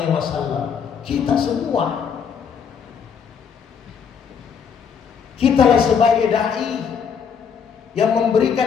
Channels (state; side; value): quieter; right; 6.9 dB